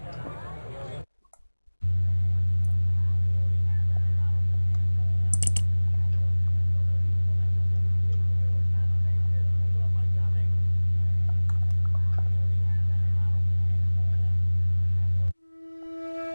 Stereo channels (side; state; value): both; inverted; correlation -1.00